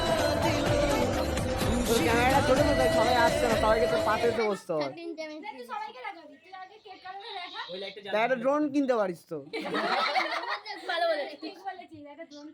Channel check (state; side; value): identical; both; correlation 1.00